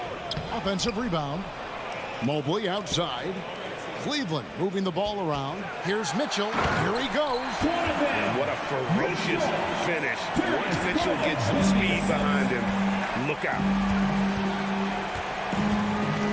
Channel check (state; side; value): identical; both; correlation 1.00